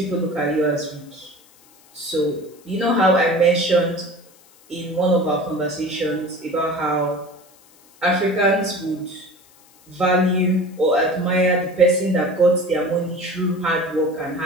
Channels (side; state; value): left; noise; hiss, 28 dB below the sound